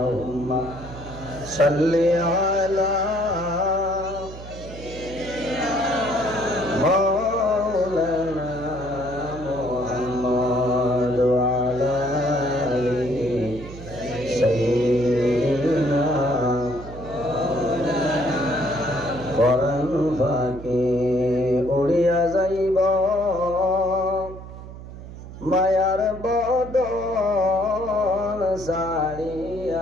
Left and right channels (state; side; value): noise; right; hum, 13 dB below the sound